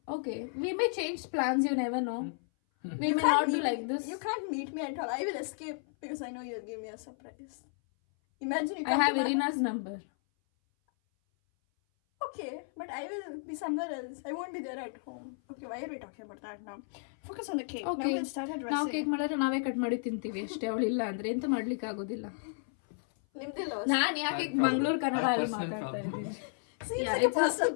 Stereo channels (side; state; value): right; silent; 56 dB below the other